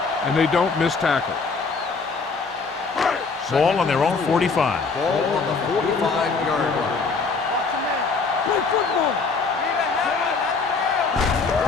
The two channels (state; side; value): quieter; right; 4.6 dB